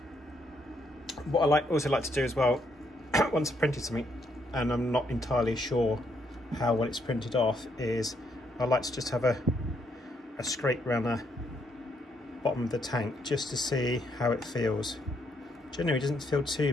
What I also like to do as well, once I've printed something and I'm not entirely sure how well it's printed off, is I like to just have a scrape around the bottom of the tank just to see how it feels. Generally it doesn't feel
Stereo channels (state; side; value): normal; both; correlation 0.74